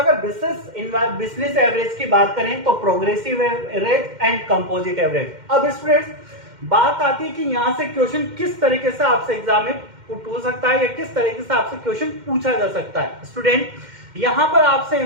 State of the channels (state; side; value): late; left; 2.1 ms